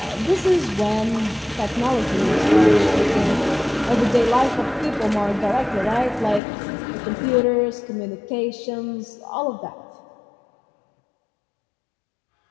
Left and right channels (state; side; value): drops out; right; at 6.4 s